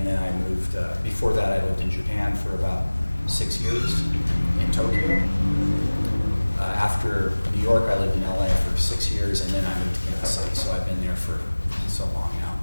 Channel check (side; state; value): both; inverted; correlation -1.00